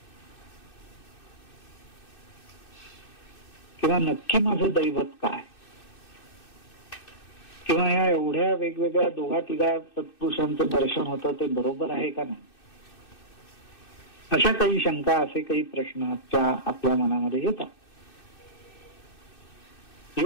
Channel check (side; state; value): right; late; 2.6 ms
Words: किंवा नक्की माझं दैवत काय? किंवा या एवढ्या वेगवेगळ्या दोघा तिघा सत्पुरुषांचं दर्शन होतं ते बरोबर आहे का नाही? अशा काही शंका, असे काही प्रश्न आपल्या मनामध्ये येतात.